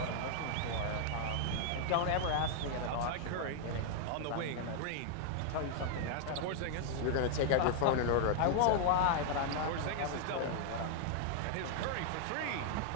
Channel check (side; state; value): both; different; correlation 0.00